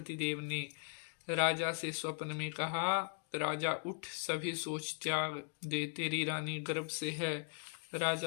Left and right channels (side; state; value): right; silent; 52 dB below the other